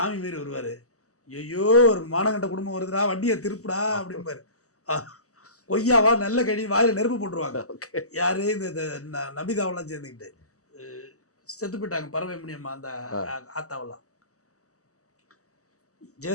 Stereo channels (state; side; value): late; right; 0.66 ms